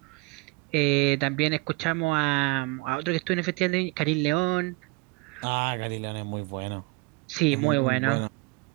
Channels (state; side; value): quieter; left; 26.4 dB